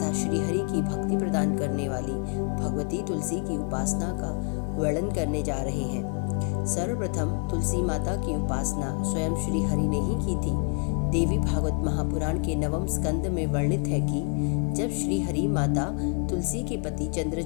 श्री हरि की भक्ति प्रदान करने वाली भगवती तुलसी की उपासना का वर्णन करने जा रहे हैं। सर्वप्रथम तुलसी माता की उपासना स्वयं श्री हरि ने ही की थी। देवी भागवत महापुराण के 9वें स्कंद में वर्णित है कि जब श्री हरि माता तुलसी के पति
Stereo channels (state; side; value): quieter; right; 37.8 dB